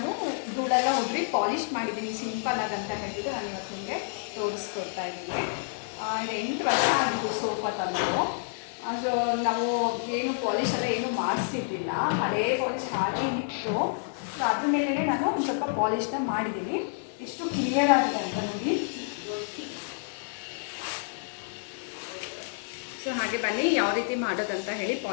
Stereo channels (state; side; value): silent; right; 59 dB below the other